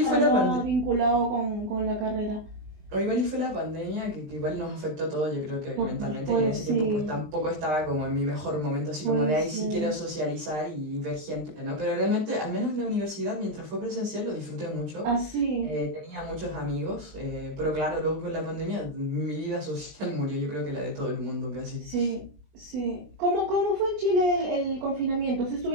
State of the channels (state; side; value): late; left; 20 ms